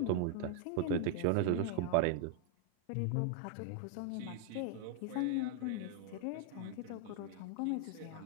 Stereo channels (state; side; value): different; both; correlation 0.00